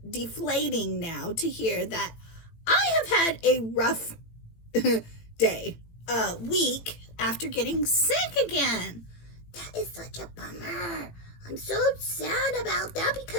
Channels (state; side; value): late; right; 18 ms